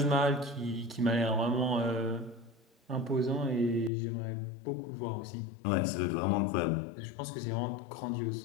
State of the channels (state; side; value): drops out; right; at 3.9 s